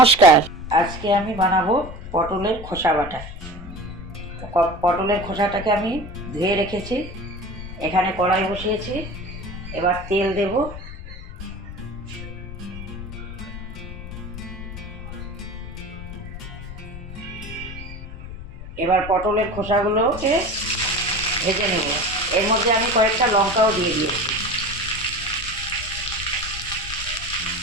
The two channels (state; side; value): noise; left; rumble, 11 dB below the sound